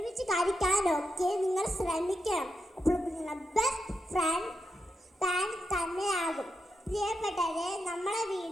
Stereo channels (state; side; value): normal; both; correlation 0.85